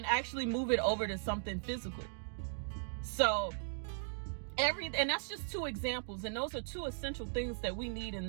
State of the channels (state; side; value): silent; left; digital silence